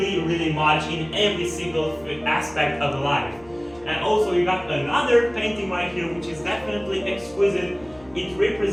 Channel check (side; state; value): left; noise; hum, 25 dB below the sound